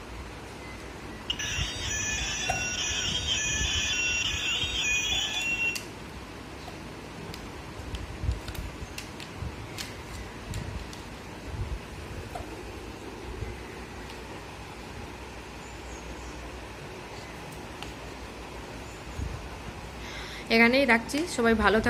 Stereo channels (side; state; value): both; identical; correlation 1.00